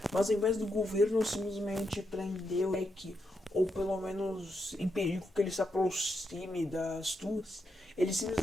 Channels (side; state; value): both; normal; correlation 0.83